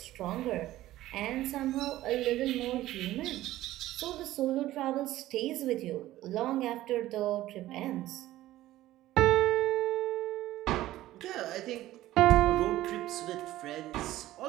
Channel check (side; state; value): left; quieter; 15.2 dB